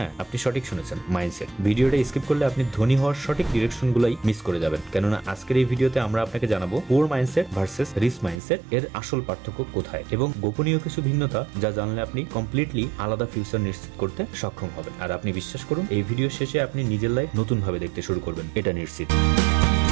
আপনি সঠিক শুনেছেন, মাইন্ডসেট। ভিডিওটা স্কিপ করলে আপনি ধনী হওয়ার সঠিক ডিরেকশন গুলাই মিস করে যাবেন। কেননা আজকের এই ভিডিওতে আমরা আপনাকে জানাবো poor mindset versus rich mindset এর আসল পার্থক্য কোথায়, এবং গোপনীয় কিছু ভিন্নতা যা জানলে আপনি কমপ্লিটলি আলাদা ফিউচার নিশ্চিত করতে সক্ষম হবেন। আর আপনি বিশ্বাস করুন, এই ভিডিও শেষে আপনি নিজের লাইফ নতুন ভাবে দেখতে শুরু করবেন, এটা নিশ্চিত।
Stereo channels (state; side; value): drops out; left; at 8.4 s